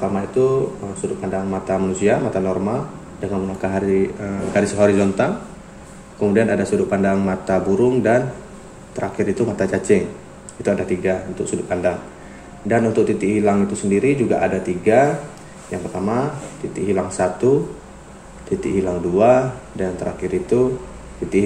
itu sudut pandang mata manusia, mata normal dengan menggunakan garis horizontal. Kemudian ada sudut pandang mata burung dan terakhir itu mata cacing. Itu ada tiga untuk sudut pandang. Dan untuk titik hilang itu sendiri juga ada tiga. Yang pertama titik hilang 1, titik hilang 2, dan terakhir itu titik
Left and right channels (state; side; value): identical; both; correlation 1.00